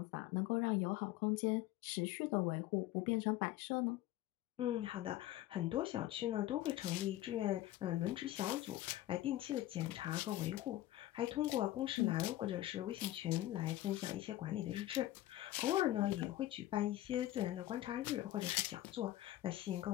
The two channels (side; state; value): right; quieter; 14.9 dB